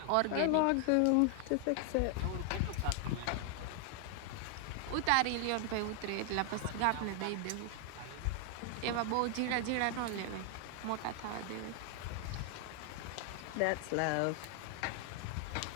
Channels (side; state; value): both; different; correlation 0.00